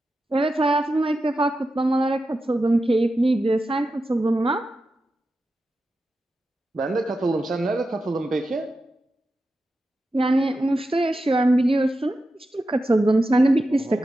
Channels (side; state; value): both; normal; correlation 0.91